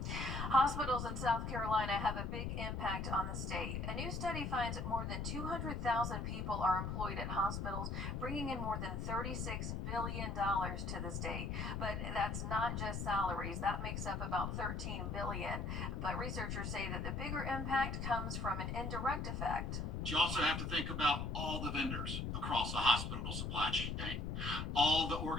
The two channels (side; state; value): left; noise; rumble, 2 dB below the sound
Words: Hospitals in South Carolina have a big impact on the state. A new study finds more than 200,000 people are employed at hospitals, bringing in more than $36 billion to the state. But that's not just salaries. That makes up about $13 billion. But researchers say that the bigger impact comes from an indirect effect. You also have to think about all the vendors across the hospital supply chain, all the